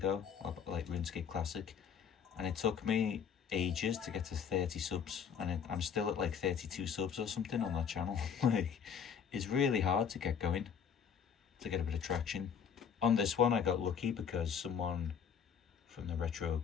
like RuneScape Classic, and it took me ages to get to 30 subs, and I'm still at like 32 subs or something on that channel. Like, it's really hard to get going, to get a bit of traction. On this one, I got lucky because someone from the retro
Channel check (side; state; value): right; quieter; 7.3 dB